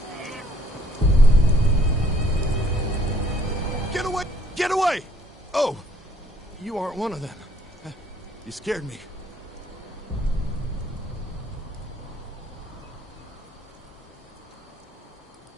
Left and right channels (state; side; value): normal; both; correlation 0.64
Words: Get away! Get away! Oh, you aren't one of them. You scared me.